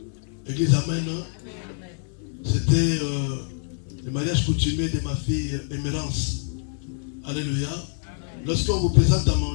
Église, amen. Hein? C'était le mariage coutumier de ma fille Émérance. Alléluia. Lorsqu'on vous présente à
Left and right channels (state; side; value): silent; right; 57 dB below the other